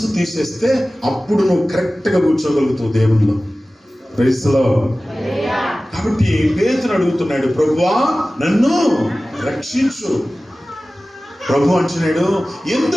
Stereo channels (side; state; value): both; normal; correlation 0.97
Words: తీసేస్తే అప్పుడు నువ్వు కరెక్ట్గా కూర్చోగలుగుతావు దేవునిలో. Praise the lord. కాబట్టి పేతురు అడుగుతున్నాడు, ప్రభువా నన్ను రక్షించు. ప్రభు అంటున్నాడు,